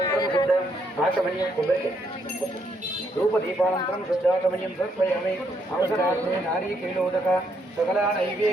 शुद्ध आचमनीयं धूपदीपानन्तरं शुद्धाचमनीयं समर्पयामि। अवसरार्थे नारीकेलोदक सकला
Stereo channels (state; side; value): normal; both; correlation 0.74